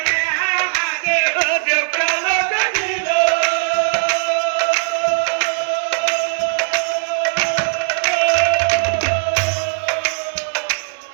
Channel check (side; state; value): left; silent; digital silence